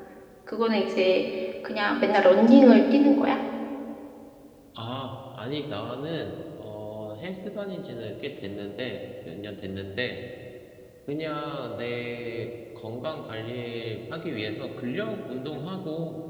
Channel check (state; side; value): identical; both; correlation 1.00